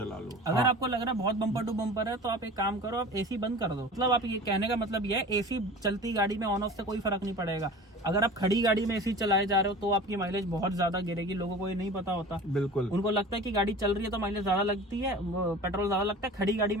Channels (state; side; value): normal; both; correlation 0.38